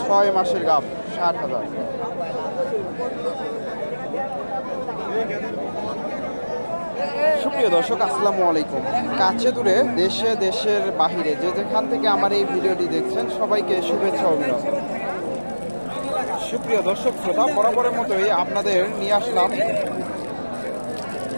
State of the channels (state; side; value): inverted; both; correlation -1.00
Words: 6 মাসের গাভ, 60,000। সুপ্রিয় দর্শক, আসসালামু আলাইকুম। কাছে দূরে, দেশে দেশের বাহিরে যে যেখান থেকে আমার এই ভিডিওটি দেখছেন, সবাইকে শুভেচ্ছা অভিনন্দন। সুপ্রিয় দর্শক শ্রোতা, বরাবরের মতোই আপনাদের নিয়ে আসলাম